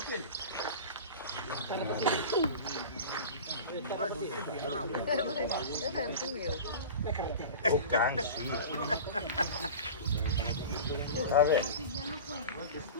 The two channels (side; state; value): both; inverted; correlation -0.34